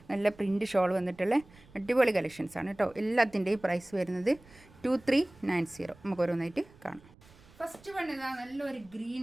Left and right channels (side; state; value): right; noise; rumble, 25 dB below the sound